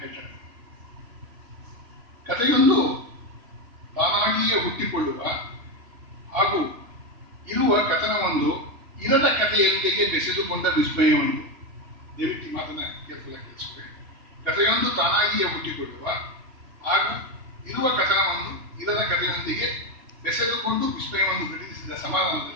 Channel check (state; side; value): late; left; 2.8 ms